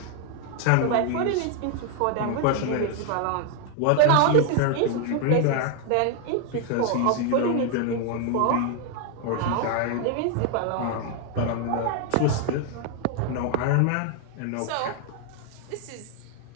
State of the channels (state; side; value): different; both; correlation 0.01